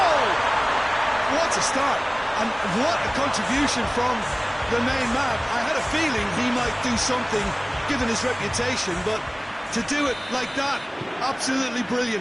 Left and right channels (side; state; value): both; identical; correlation 1.00